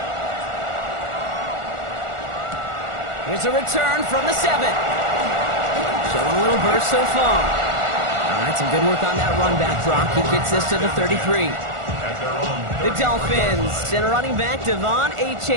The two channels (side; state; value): left; late; 1.4 ms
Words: Here's a return from the 7. Showing a little burst so far. All right, some good work on that run back, Brock. He gets this to the 33. The Dolphins send a running back, Devon